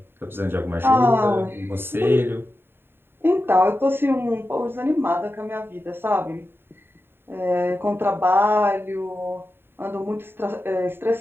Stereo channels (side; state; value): left; late; 0.11 ms